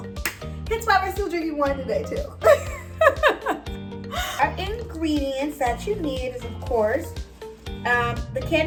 Hence why we're still drinking wine today too. Our ingredients that you need is, of course, the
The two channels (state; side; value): identical; both; correlation 1.00